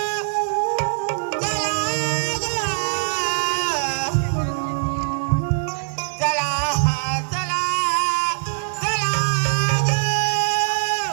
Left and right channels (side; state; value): left; silent; digital silence